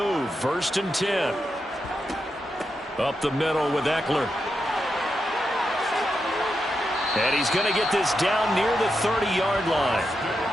1st and 10. Up the middle with Eckler. And he's going to get this down near the 30-yard line.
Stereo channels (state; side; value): normal; both; correlation 0.86